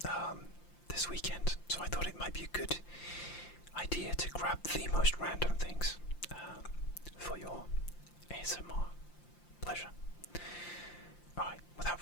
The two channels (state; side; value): late; right; 5.8 ms